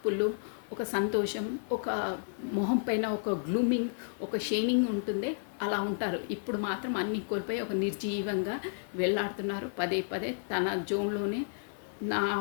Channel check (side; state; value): right; silent; digital silence